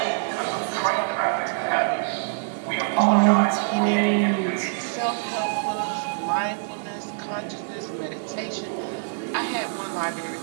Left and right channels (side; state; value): left; silent; 62 dB below the other